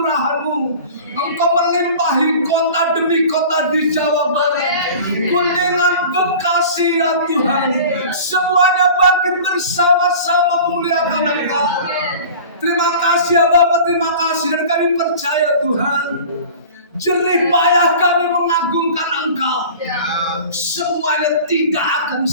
Engkau melimpah limpahi kota demi kota di Jawa Barat. Kuningan, Bekasi ya Tuhan. Semuanya bangkit bersama-sama memuliakan Engkau. Terima kasih ya Bapak, terima kasih. Dan kami percaya Tuhan, jerih payah kami mengagungkan Engkau. Semuanya tidak akan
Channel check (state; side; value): inverted; both; correlation -0.40